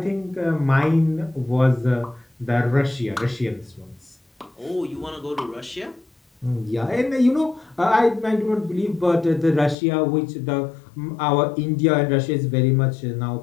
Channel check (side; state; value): right; drops out; at 9.8 s